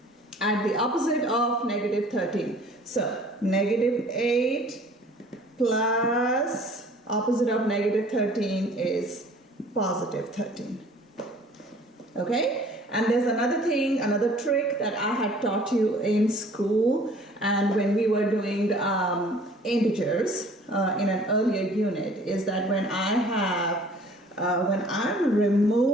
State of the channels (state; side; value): normal; both; correlation 0.52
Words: Add the opposite of negative 13. So negative 8 plus opposite of negative 13 is positive 13. Okay? And there's another thing, another trick that I had taught you in school and when we were doing integers in an earlier unit, is that when I'm